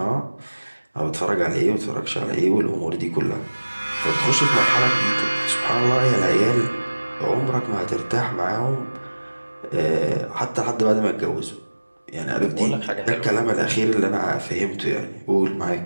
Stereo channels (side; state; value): both; inverted; correlation -1.00